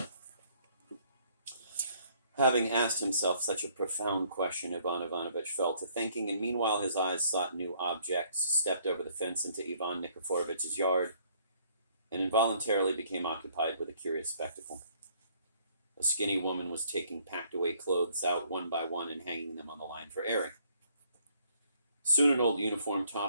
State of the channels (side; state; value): both; inverted; correlation -0.64